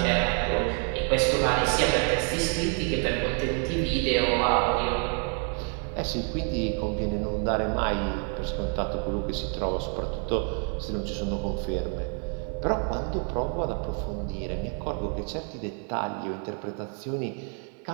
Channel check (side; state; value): left; quieter; 38.8 dB